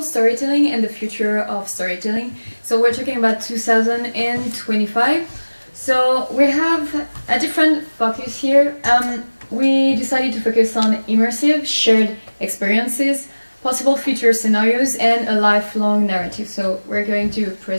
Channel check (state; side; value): inverted; both; correlation -1.00